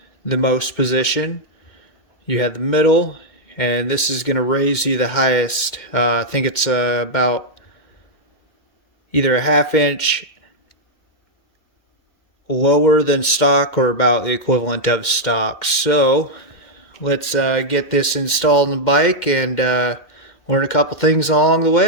the most position. You have the middle, and this is going to raise you the highest. I think it's about either a ½ inch lower than stock or about the equivalent of stock. So let's get this installed in the bike and learn a couple things along the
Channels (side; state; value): right; late; 2.1 ms